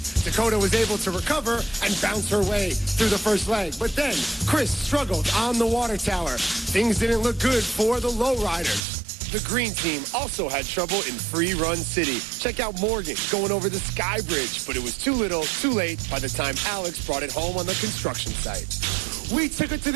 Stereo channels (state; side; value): drops out; left; at 8.8 s